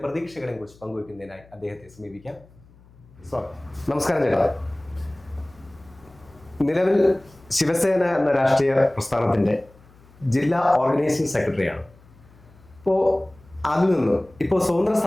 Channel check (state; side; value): noise; left; hum, 26 dB below the sound